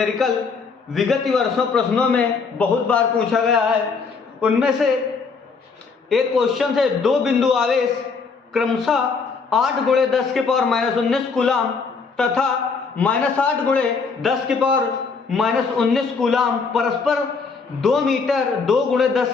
विगत वर्षों प्रश्नों में बहुत बार पूछा गया है। उनमें से एक क्वेश्चन है, दो बिंदु आवेश क्रमशः 8 × 10⁻⁻19 कूलाम तथा -8 × 10⁻⁻19 कूलाम परस्पर 2 मीटर 2 ×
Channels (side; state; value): right; quieter; 4.9 dB